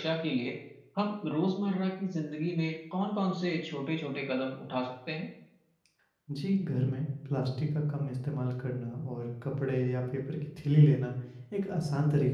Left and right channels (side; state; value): both; identical; correlation 1.00